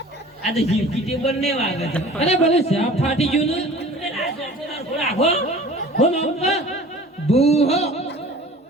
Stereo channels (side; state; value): both; normal; correlation 0.44